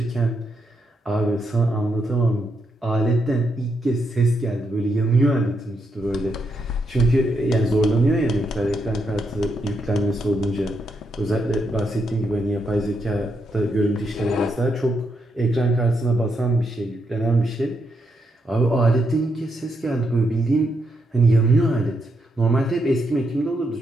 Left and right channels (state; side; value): normal; both; correlation 0.80